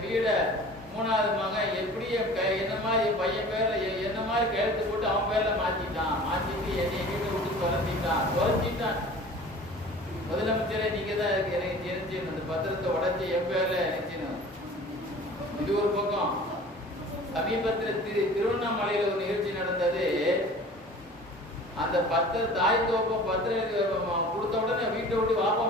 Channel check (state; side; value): normal; both; correlation 0.43